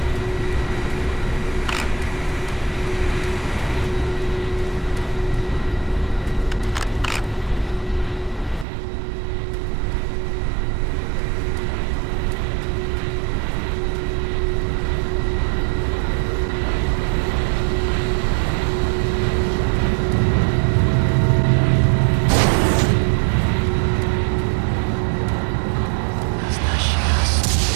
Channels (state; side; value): drops out; left; at 8.7 s